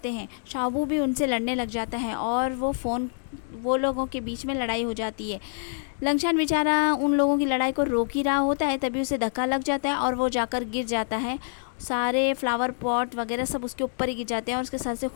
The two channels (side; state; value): right; silent; 61 dB below the other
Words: हैं। शाओबू भी उनसे लड़ने लग जाता है और वो लोगों के बीच में लड़ाई हो जाती है। लंगशान बेचारा उन लोगों की लड़ाई को रोक ही रहा होता है, तभी उसे धक्का लग जाता है और वो जाकर गिर जाता है। सारे फ्लावर पॉट वगैरह सब उसके ऊपर ही गिर जाते हैं और उसके सर से